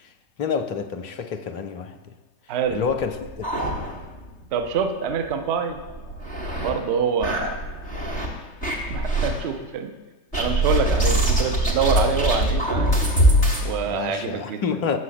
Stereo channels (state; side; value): late; right; 3.3 ms